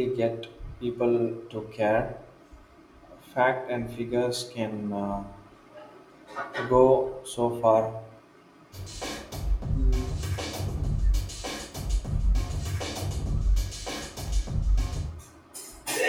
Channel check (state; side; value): identical; both; correlation 1.00